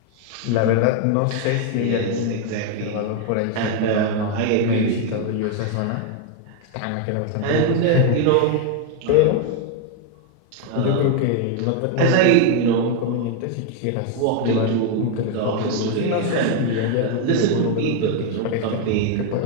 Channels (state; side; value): different; both; correlation 0.01